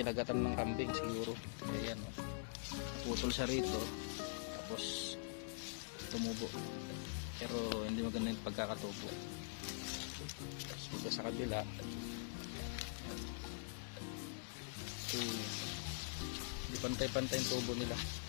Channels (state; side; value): silent; right; digital silence